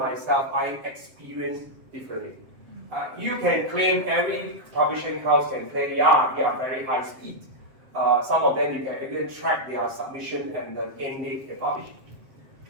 I experience differently. You can claim, every publishing house can claim, yeah, we are very high speed. Some of them you can even track their submission and the end date they publish.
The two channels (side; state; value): left; late; 7.6 ms